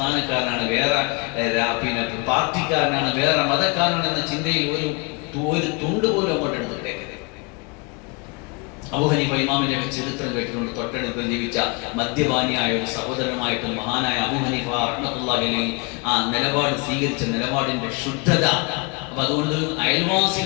വേറെ പാർട്ടിക്കാരനാണ്, വേറെ മതക്കാരനാണ് എന്ന ചിന്തയിൽ ഒരു തുണ്ട് പോലും അങ്ങോട്ട് എടുത്തിട്ടേക്കരുത്. അബൂ ഹനീഫ ഇമാമിന്റെ ചരിത്രം കേട്ടിട്ടുണ്ട്. തൊട്ടടുത്ത് ജീവിച്ച മദ്യപാനിയായ ഒരു സഹോദരനുമായിട്ട് മഹാനായ അബൂ ഹനീഫ റഹ്മത്തുള്ളാഹി അലൈഹി ആ നിലപാട് സ്വീകരിച്ച നിലപാടിന്റെ ശുദ്ധത. അപ്പൊ അതുകൊണ്ട്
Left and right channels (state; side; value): quieter; right; 31.3 dB